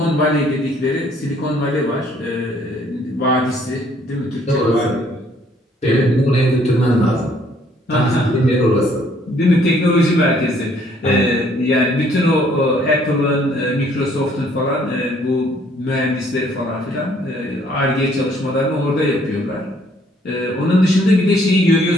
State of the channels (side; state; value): both; normal; correlation 0.63